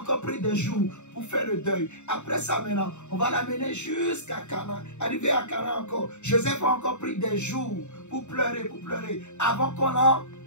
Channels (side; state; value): right; late; 0.83 ms